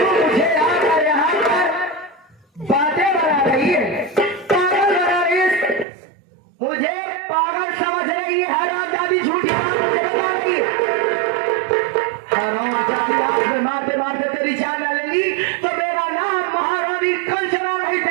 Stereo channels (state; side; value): drops out; left; at 5.9 s